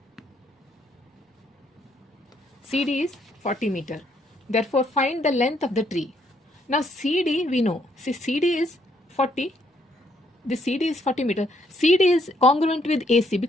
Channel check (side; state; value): both; normal; correlation 0.71